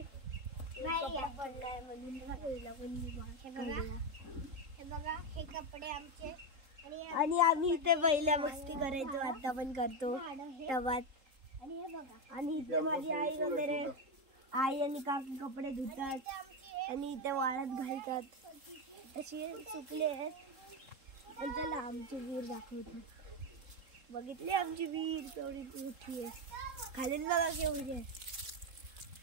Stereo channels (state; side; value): late; left; 3.7 ms